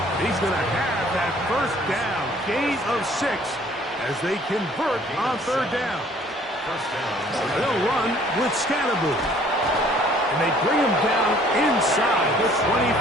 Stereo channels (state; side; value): normal; both; correlation 0.57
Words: He's going to have that 1st down. Gain of 6 as they convert on 3rd down. First down. They'll run with Scatteroo. And they bring him down inside the